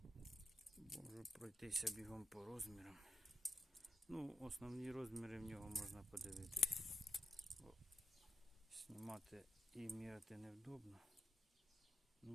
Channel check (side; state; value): both; normal; correlation 0.85